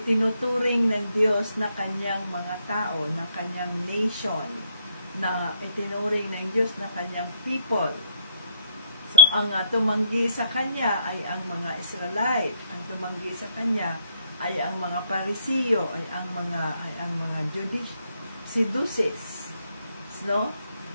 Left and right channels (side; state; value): both; inverted; correlation -0.70